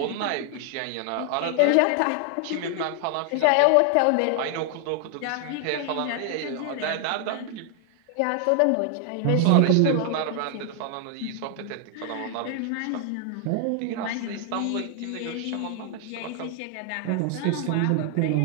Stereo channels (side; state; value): both; different; correlation 0.00